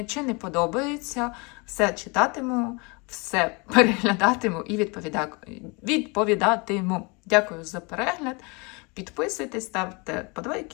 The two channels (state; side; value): quieter; right; 29.6 dB